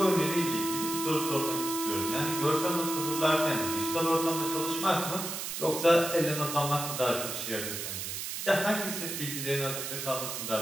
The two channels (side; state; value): right; noise; hiss, 5 dB below the sound